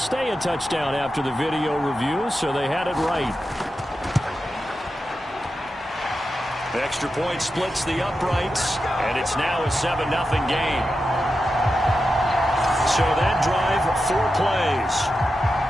a touchdown after the video review, so they had it right. Extra point splits the uprights, and it's now a 7-0 game. So that drive, 4 plays.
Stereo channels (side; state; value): both; normal; correlation 0.90